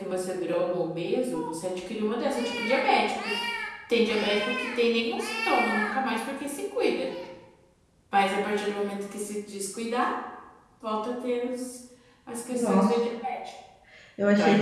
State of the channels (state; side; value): identical; both; correlation 1.00